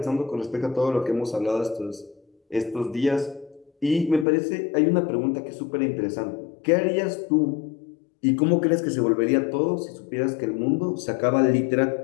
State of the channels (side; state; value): right; drops out; at 4.2 s